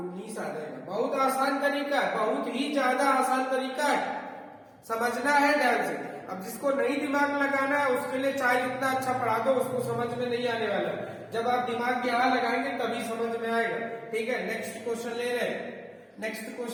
आ जाएगा। बहुत आसान तरीका है, बहुत ही ज्यादा आसान तरीका है, समझना है ध्यान से। अब जिसको नहीं दिमाग लगाना है उसके लिए चाहे जितना अच्छा पढ़ा दो उसको समझ में नहीं आने वाला। जब आप दिमाग यहाँ लगाएंगे तभी समझ में आएगा। ठीक है, नेक्स्ट क्वेश्चन ले रहे हैं। नेक्स्ट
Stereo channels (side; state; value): both; identical; correlation 1.00